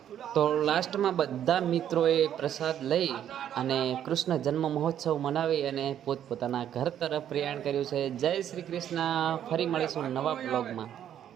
તો લાસ્ટમાં બધા મિત્રોએ પ્રસાદ લઈ અને કૃષ્ણ જન્મ મહોત્સવ મનાવી અને પોતપોતાના ઘર તરફ પ્રયાણ કર્યું છે. જય શ્રી કૃષ્ણ. ફરી મળીશું નવા બ્લોગમાં.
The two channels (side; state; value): left; quieter; 10.2 dB